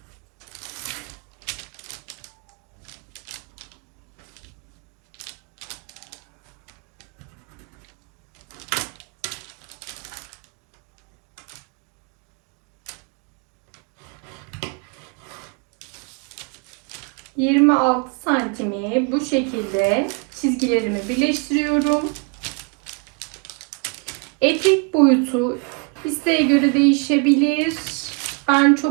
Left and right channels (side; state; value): left; quieter; 33.6 dB